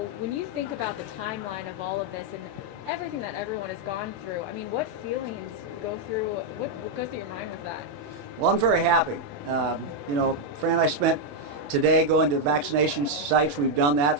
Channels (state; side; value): late; left; 28 ms